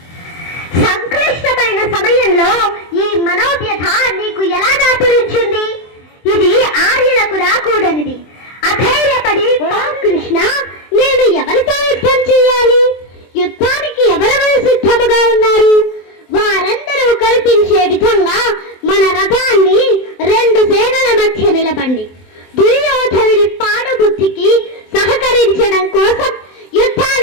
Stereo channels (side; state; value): right; late; 23 ms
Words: సంక్లిష్టమైన సమయంలో ఈ మనోవ్యథ నీకు ఎలా దాపురించింది? ఇది ఆర్యులకు రాకూడనిది. అధైర్యపడి కృష్ణ, నేను ఎవరితో యుద్ధం చేయాలి? యుద్ధానికి ఎవరెవరు సిద్ధముగా ఉన్నారు? వారందరూ కనిపించే విధంగా మన రథాన్ని రెండు సేనల మధ్య నిలబండి. దుర్యోధనుడి పాడుబుద్ధికి సహకరించడం కోసం